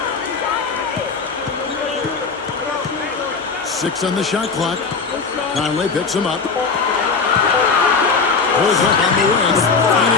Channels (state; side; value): quieter; right; 4.9 dB